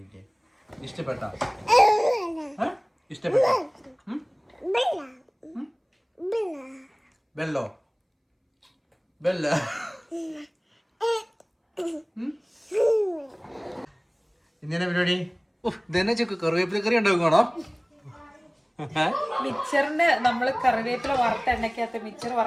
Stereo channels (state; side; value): identical; both; correlation 1.00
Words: ഇഷ്ടപ്പെട്ടോ? ബെല്ലോ ബെല്ല ഇങ്ങനെ പരിപാടി. ഇതന്നെ കറിവേപ്പില കറി ഉണ്ടാക്കണോ? മിക്സറിന് നമ്മൾ കറിവേപ്പില വറുത്ത എണ്ണയ്ക്കകത്ത് മിക്സർ